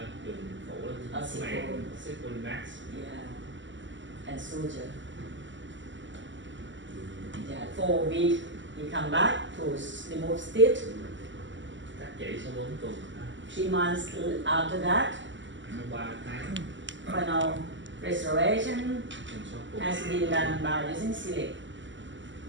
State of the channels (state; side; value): late; left; 0.54 ms